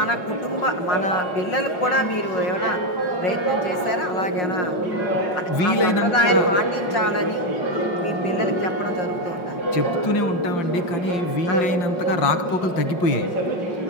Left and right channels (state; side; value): late; right; 5.5 ms